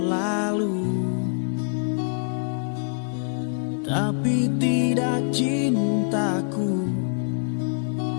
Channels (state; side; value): silent; right; 62 dB below the other